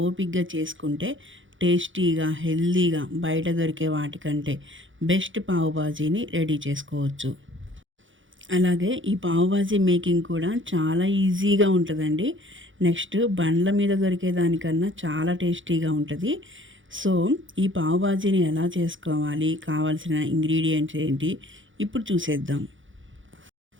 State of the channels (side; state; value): left; late; 0.56 ms